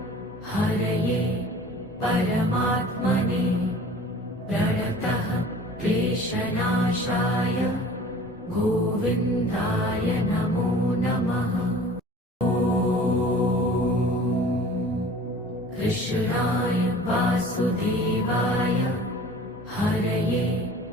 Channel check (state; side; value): normal; both; correlation 0.45